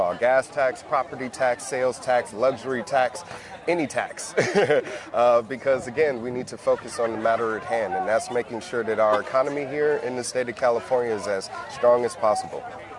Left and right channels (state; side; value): identical; both; correlation 1.00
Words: Gas tax, property tax, sales tax, luxury tax, any tax. Because again, we need to focus on the matter at hand, and that's making sure that our economy here in the state of California is as strong as possible.